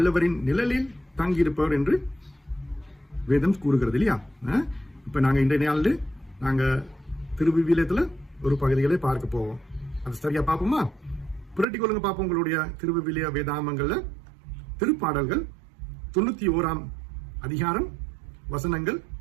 நிழலில் தங்கியிருப்பவர் என்று வேதம் கூறுகிறது இல்லையா? இப்ப நாங்க இன்றைய நாளில் நாங்க திருவிவிலியத்துல ஒரு பகுதிகளை பார்க்க போவோம். அது சரியா பார்ப்போமா? புரட்டி கொள்ளுங்க பார்ப்போம். உங்களுடைய திருவிவிலிய வேதாமங்கள்ல திருப்பாடல்கள் 91ஆம் அதிகாரம் வசனங்கள்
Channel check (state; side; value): drops out; left; at 11.7 s